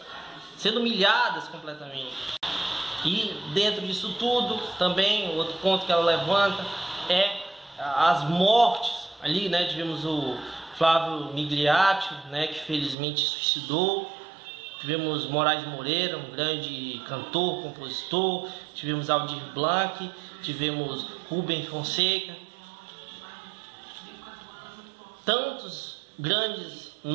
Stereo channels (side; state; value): left; drops out; at 13.0 s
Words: sendo humilhadas completamente. E dentro disso tudo, também, outro ponto que ela levanta é as mortes. Ali, né, tivemos o Flávio Migliaccio, né, que felizmente se suicidou. Tivemos Moraes Moreira, um grande cantor, compositor. Tivemos Aldir Blanc, tivemos Rubem Fonseca. Tantos grandes